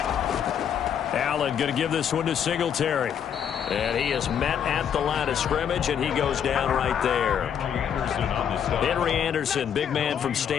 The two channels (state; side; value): quieter; right; 8.4 dB